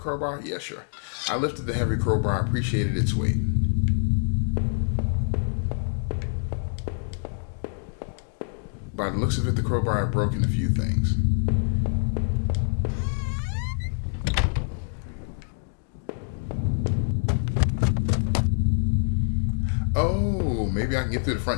Yeah, sure. I lifted the heavy crowbar. I appreciated its weight. By the looks of it, the crowbar had broken a few things. Oh, maybe I can get through the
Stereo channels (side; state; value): right; silent; digital silence